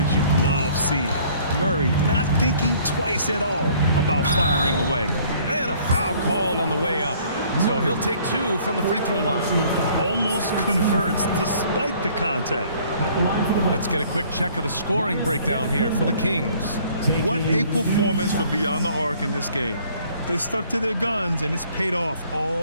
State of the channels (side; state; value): both; inverted; correlation -0.57